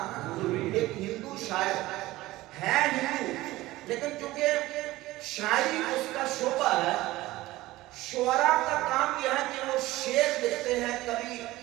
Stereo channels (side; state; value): left; quieter; 17.8 dB